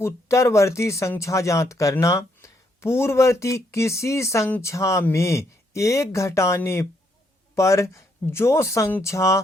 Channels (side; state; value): both; normal; correlation 0.74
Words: उत्तरवर्ती संख्या ज्ञात करना। पूर्ववर्ती किसी संख्या में एक घटाने पर जो संख्या